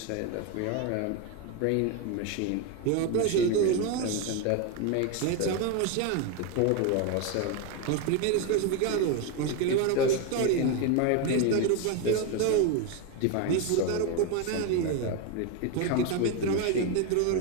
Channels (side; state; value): both; different; correlation 0.02